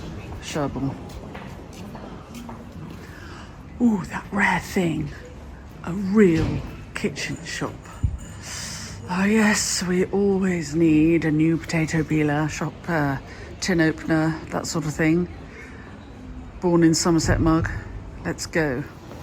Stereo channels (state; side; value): identical; both; correlation 1.00